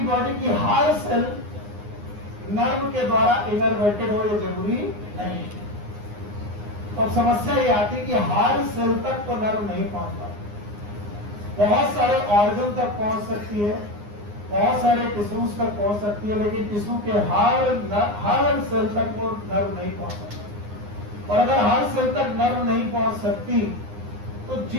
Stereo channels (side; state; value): left; late; 9.7 ms